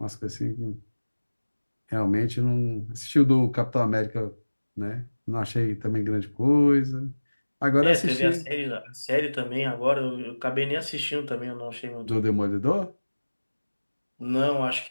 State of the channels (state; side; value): inverted; both; correlation -1.00